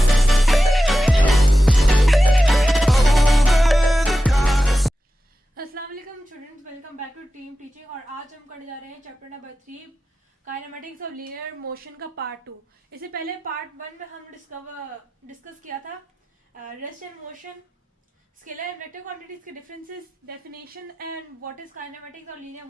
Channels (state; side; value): normal; both; correlation 0.93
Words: अस्सलाम वालेकुम students, welcome back to team teaching. और आज हम करने जा रहे हैं chapter number 3 kinematics of linear motion का पार्ट 2। इससे पहले पार्ट 1 में हम डिस्कस किया था rest and motion, scalar and vector quantities के differences, definition and what is kinematics और लीनियर